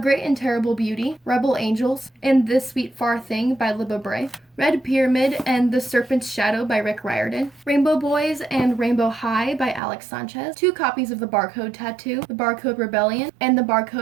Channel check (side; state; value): left; drops out; at 9.8 s